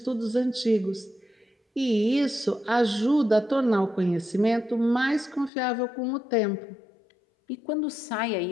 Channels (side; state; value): right; drops out; at 5.5 s